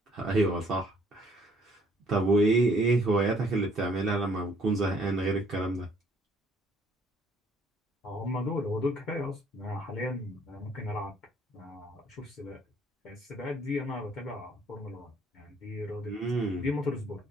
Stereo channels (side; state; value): both; normal; correlation 0.62